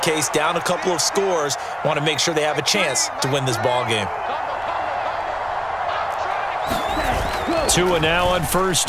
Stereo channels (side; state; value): both; identical; correlation 1.00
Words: down a couple of scores. Want to make sure they have a chance to win this ball game. Tua now on first